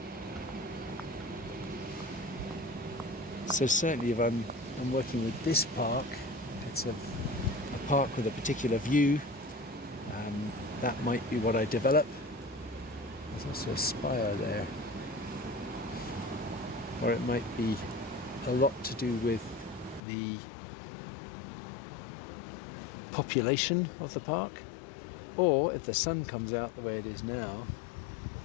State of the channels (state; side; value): drops out; right; at 20.0 s